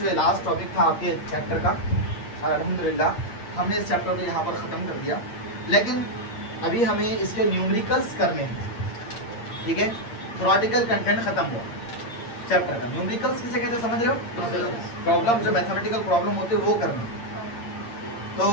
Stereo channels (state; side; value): late; right; 8.7 ms